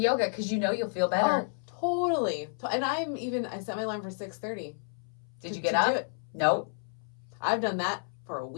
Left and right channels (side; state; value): right; silent; 57 dB below the other